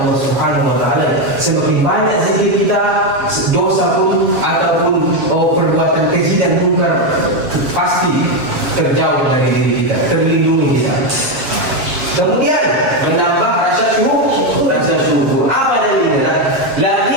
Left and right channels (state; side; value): late; left; 7.4 ms